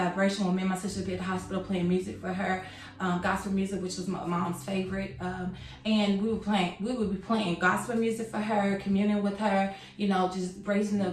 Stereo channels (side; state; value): both; identical; correlation 1.00